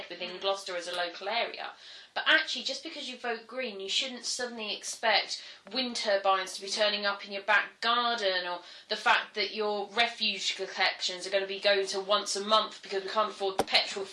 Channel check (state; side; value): identical; both; correlation 1.00